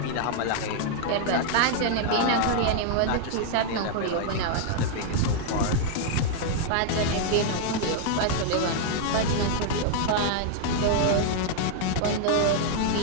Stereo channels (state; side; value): different; both; correlation 0.00